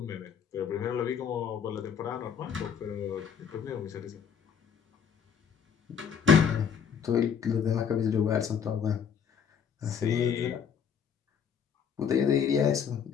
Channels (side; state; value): right; quieter; 7.3 dB